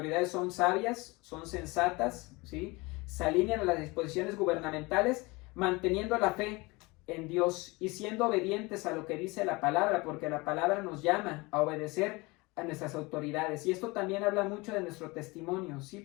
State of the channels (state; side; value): quieter; right; 24.5 dB